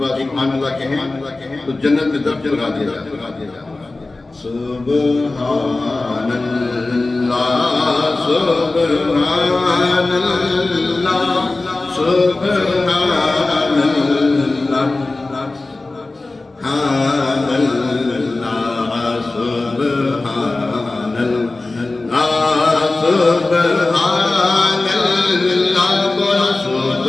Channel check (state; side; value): quieter; right; 3.2 dB